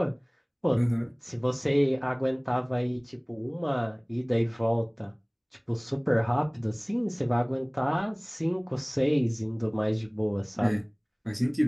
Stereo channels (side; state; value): both; identical; correlation 1.00